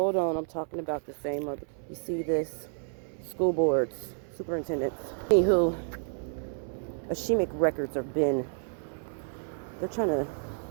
on, I'm talking about the same other, you see this, school boards, superintendents. Anywho, Ashemic records have been, they're trying to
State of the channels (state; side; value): silent; left; 58 dB below the other